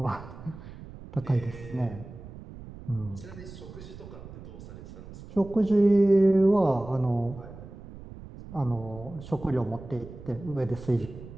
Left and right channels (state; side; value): noise; right; rumble, 15 dB below the sound